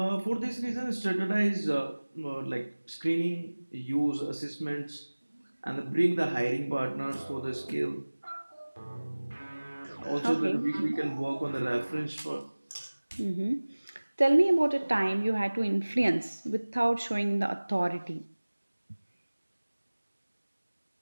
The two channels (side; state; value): both; inverted; correlation -1.00